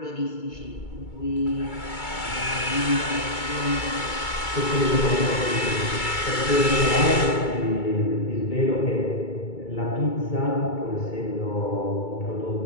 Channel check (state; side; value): late; right; 2.2 ms